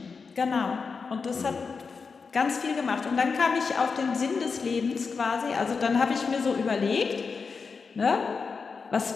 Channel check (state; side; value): quieter; right; 5.1 dB